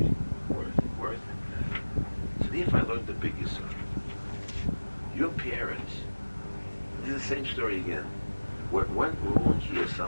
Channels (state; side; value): inverted; both; correlation -1.00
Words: Worth. So if I learned the biggest son, your parents, it's the same story again. What went wrong here